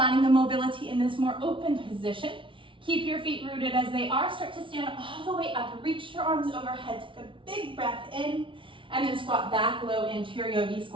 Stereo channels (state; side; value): late; left; 0.25 ms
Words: the mobility in this more open position. Keep your feet rooted as they are. Start to stand all the way up. Reach your arms overhead. Take a big breath in. And then squat back low into your yogi